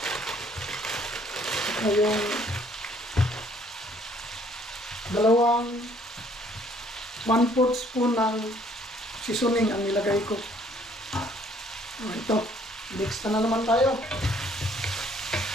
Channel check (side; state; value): both; normal; correlation 0.62